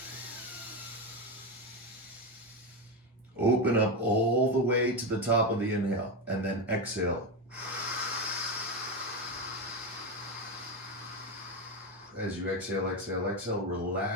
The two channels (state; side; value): normal; both; correlation 0.13